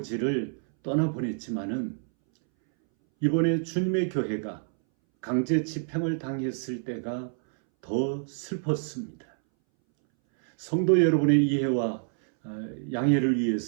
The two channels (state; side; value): silent; left; 60 dB below the other